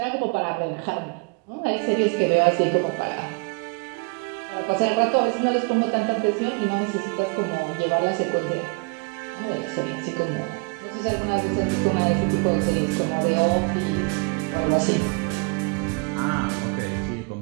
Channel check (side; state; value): left; quieter; 33.3 dB